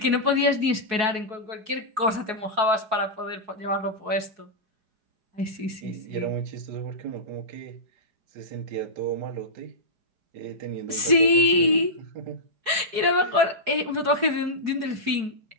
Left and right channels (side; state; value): left; late; 4.7 ms